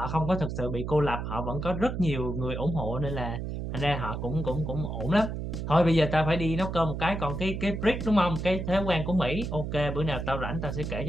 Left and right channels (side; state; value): right; noise; hum, 4 dB below the sound